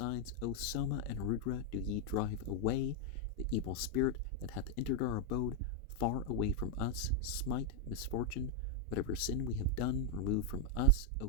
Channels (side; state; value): both; normal; correlation 0.00